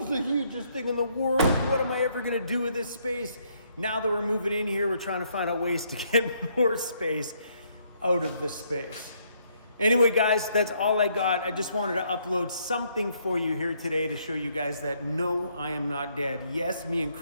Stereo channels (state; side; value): inverted; both; correlation -0.71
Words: is the hugest thing in the world. What am I ever gonna do with this space? Now that we're moving in here, we're trying to find out ways to get more space out of the space. Anyway, guys, that's all I got. I just wanted to upload something for you here today to show you guys that no, I am not dead. Yes, me and